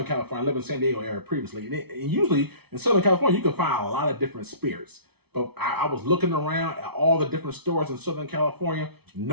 California. I lived in San Diego area previously. And usually in Southern California, you can find a lot of different spirits. But I was looking around at all the different stores in Southern California.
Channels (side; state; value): left; late; 0.98 ms